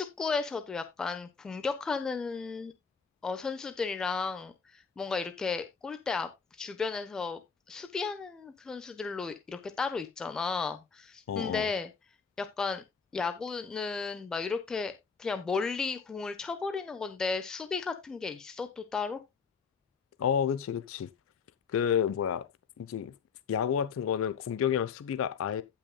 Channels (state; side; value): quieter; right; 5.7 dB